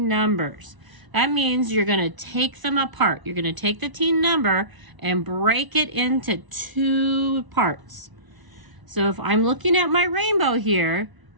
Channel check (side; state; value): left; late; 1.0 ms